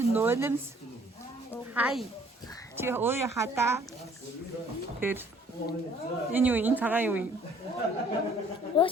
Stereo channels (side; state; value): both; normal; correlation 0.58